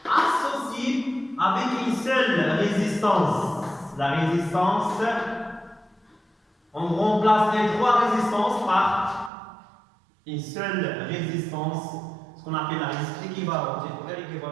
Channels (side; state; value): left; drops out; at 9.3 s